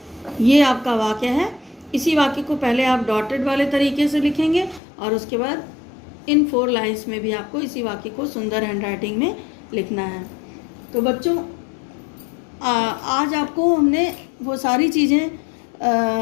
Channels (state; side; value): drops out; right; at 4.8 s